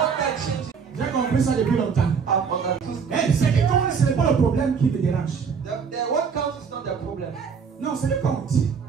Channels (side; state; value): left; quieter; 6.1 dB